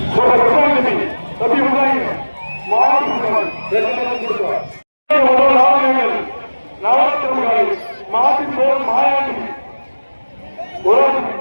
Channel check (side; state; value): both; inverted; correlation -1.00